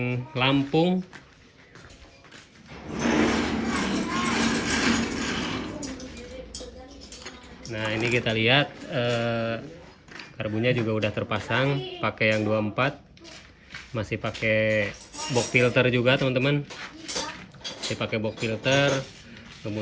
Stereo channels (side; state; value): both; identical; correlation 1.00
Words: Lampung. Nah ini kita lihat karbunya juga udah terpasang, pakai yang 24, masih pakai box filter juga teman-teman. dipakai box filter,